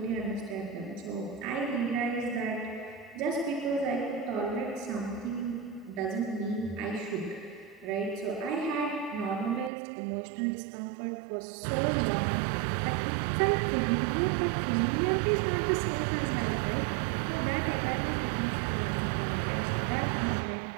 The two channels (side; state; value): left; drops out; at 9.7 s